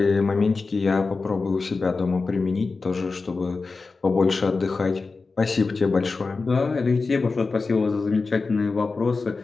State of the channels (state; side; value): quieter; right; 4.1 dB